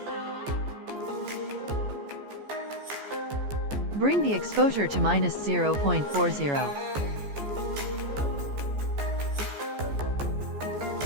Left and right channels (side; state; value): left; late; 14 ms